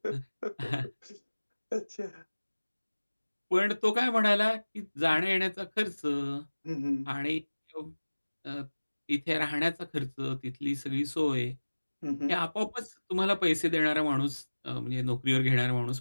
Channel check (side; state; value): both; inverted; correlation -1.00